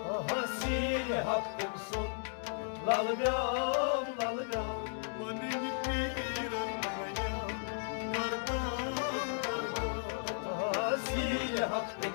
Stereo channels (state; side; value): silent; right; digital silence